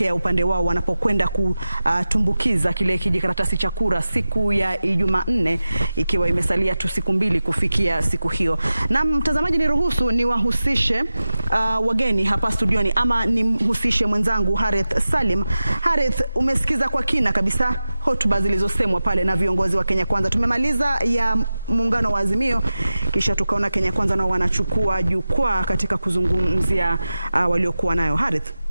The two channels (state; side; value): inverted; both; correlation -0.95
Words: upande wao wanapokwenda kutumbukiza kile kijikaratasi cha kura siku ya Jumanne, ikiwa imesalia tu siku mbili kufikia siku hiyo. Na mtazamaji, niruhusu niwahusishe wageni hapa studioni, ama nimhusishe mwenzangu Harith Salim. Harith, umesikiza kwa kina kabisa hotuba zilizosemwa pale na viongozi wa Kenya Kwanza. Tumemaliza ya muungano wa Azimio, kisha tukaona Kenya Kwanza nao wanachukua jukwaa katika kuzungumzia waliokuwa nayo. Harith,